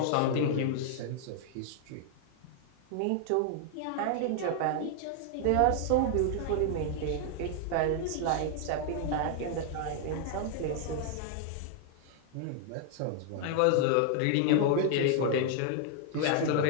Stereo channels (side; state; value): both; different; correlation 0.00